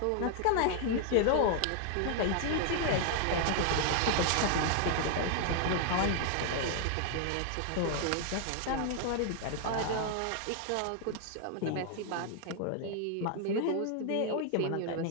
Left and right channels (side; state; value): both; different; correlation 0.00